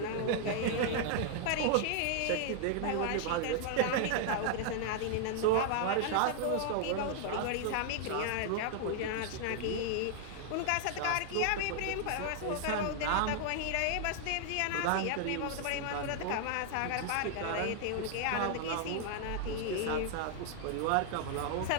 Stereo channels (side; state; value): both; different; correlation 0.00